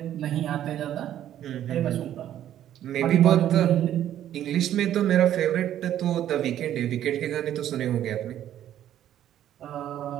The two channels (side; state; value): left; quieter; 11.4 dB